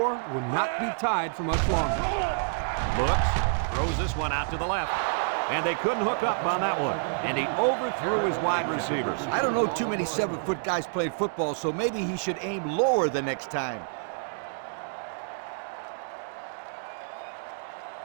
will not be tied for much longer. Looks, throws this one out to the left. And they couldn't hook up on that one. And he overthrew his wide receivers. I don't know too many 7-foot guys playing football, so maybe he should aim lower the next time.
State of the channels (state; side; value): silent; left; digital silence